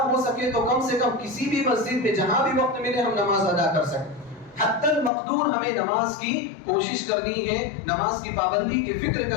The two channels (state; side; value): drops out; right; at 5.1 s